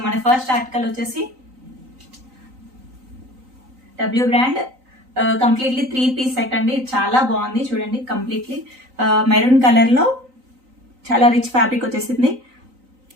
మన ఫస్ట్ ఆర్టికల్ వచ్చేసి W brand completely 3-piece set అండి. చాలా బాగుంది చూడండి. కంప్లీట్లీ మెరూన్ కలర్లో చాలా రిచ్ ఫ్యాబ్రిక్ వచ్చేసింది.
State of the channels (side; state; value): left; late; 3.9 ms